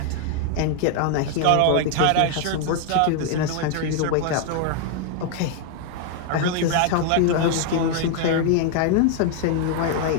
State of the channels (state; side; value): different; both; correlation 0.00